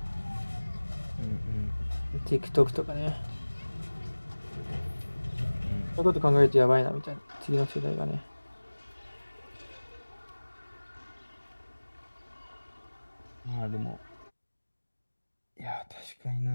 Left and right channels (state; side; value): inverted; both; correlation -1.00